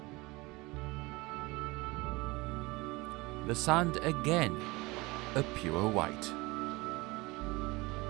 The sand again, a pure white.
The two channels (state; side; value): quieter; left; 22.9 dB